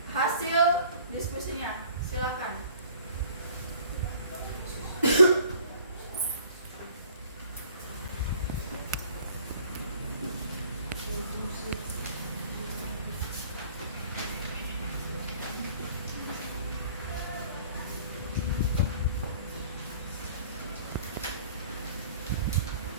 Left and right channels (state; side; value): inverted; both; correlation -0.52